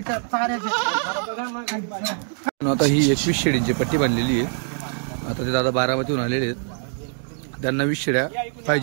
चाऱ्याच्या. आता ही 21 शेळींची पट्टी बांधलेली आहे. आता ते दादा बारामतीहून आलेले आहेत. त्यांना 20 शेळ्या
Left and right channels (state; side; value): silent; left; 63 dB below the other